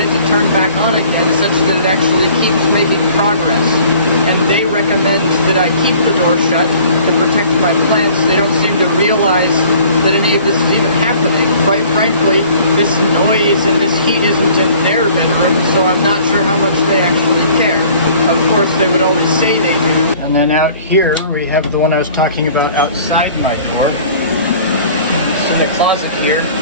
to turn back on again, such that it actually keeps making progress. And they recommend that I keep the door shut to protect my plants. They don't seem to realize that any of this is even happening. Quite frankly, this noise and this heat isn't in their bedroom, so I'm not sure how much they actually care. Of course, they would always say they do. And then out here, we have the one I was talking about outside my door. It's in the closet here.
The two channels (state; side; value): inverted; both; correlation -0.51